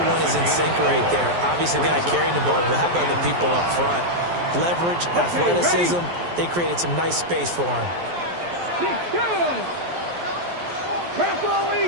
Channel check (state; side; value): late; left; 12 ms